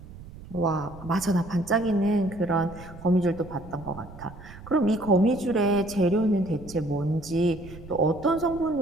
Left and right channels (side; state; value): right; noise; rumble, 17 dB below the sound